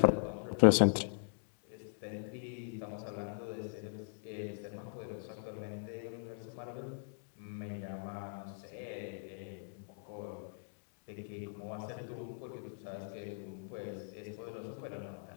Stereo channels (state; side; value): silent; right; digital silence